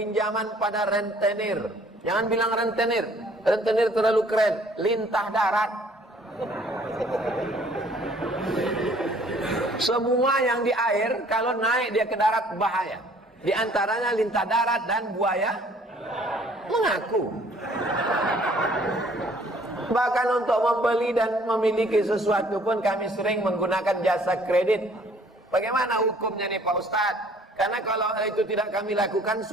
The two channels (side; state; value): both; normal; correlation 0.57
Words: pada rentenir. Jangan bilang rentenir. Rentenir terlalu keren. Lintah darat. Semua yang di air, kalau naik dia ke darat bahaya. Di antaranya lintah darat dan buaya mengaku. Bahkan untuk membeli dan memiliki sesuatu pun kami sering menggunakan jasa kredit. Bagaimana hukumnya nih Pak Ustadz? Karena kalau itu tidak kami lakukan,